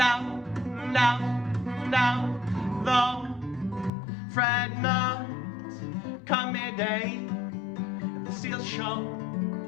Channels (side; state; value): right; drops out; at 3.9 s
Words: though fret not, come midday, the steel show.